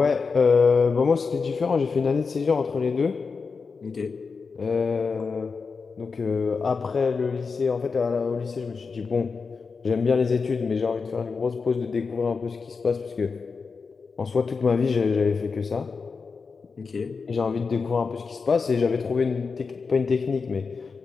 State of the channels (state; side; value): quieter; right; 4.9 dB